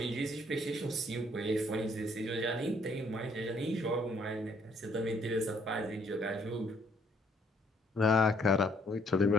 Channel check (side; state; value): both; normal; correlation 0.66